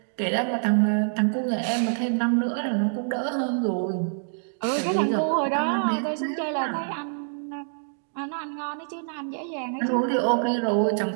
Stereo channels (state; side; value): silent; left; digital silence